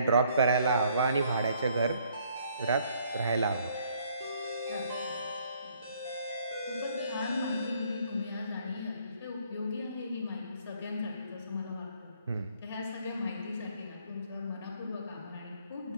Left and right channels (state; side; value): inverted; both; correlation -0.64